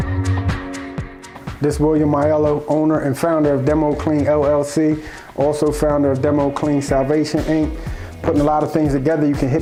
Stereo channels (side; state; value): both; identical; correlation 1.00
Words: This is William Aiello, owner and founder of Demo Clean LLC, also founder of Demo Clean Salvation Inc. Putting a lot of things together. You can